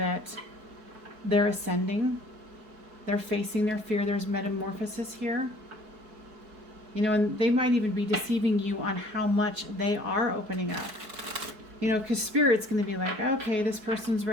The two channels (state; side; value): late; left; 4.6 ms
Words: they're ascending, they're facing their fear, there's metamorphosis here. And they might even be deceiving you on how much they are opening up. Because Spirit's going to be like, okay, this person's